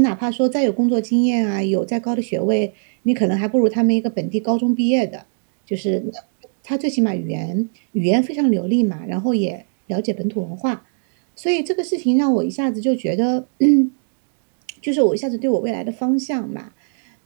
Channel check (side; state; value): left; silent; digital silence